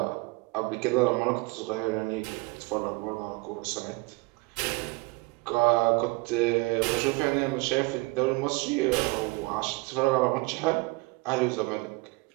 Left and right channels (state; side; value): quieter; left; 25.2 dB